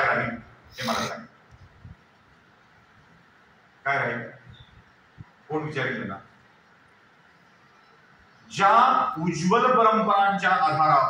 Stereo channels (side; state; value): both; identical; correlation 1.00